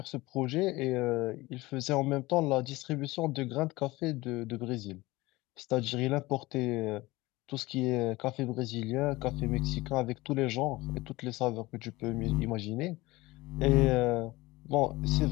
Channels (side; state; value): right; quieter; 20.4 dB